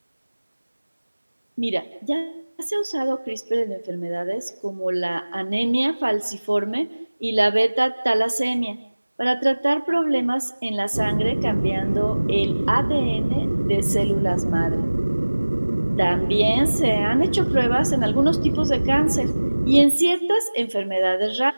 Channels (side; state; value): both; inverted; correlation -1.00